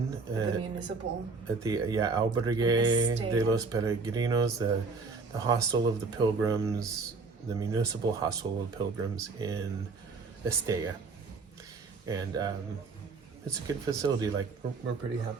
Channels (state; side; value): quieter; left; 4.3 dB